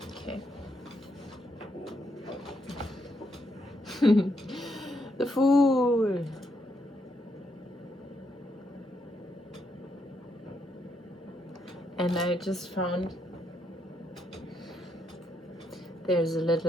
Okay. The Fool. And I just found there's a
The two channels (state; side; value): normal; both; correlation 0.78